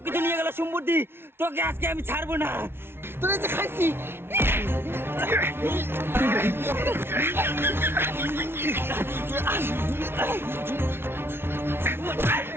নিয়ে গেল সম্পত্তি, তোকে আজকে আমি ছাড়বো না। তোরা যে খাইছি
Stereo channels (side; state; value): left; late; 0.11 ms